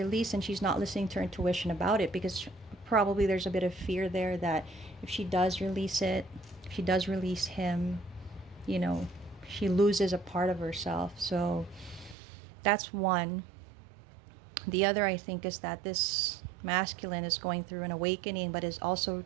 and she's not listening to her intuition about it, because probably there's a bit of fear there that if she does release it, if she does release him, you know, she loses a part of herself. So that's one. The other, I think, is that this masculine is going through an awakening, but is also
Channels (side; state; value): left; drops out; at 12.2 s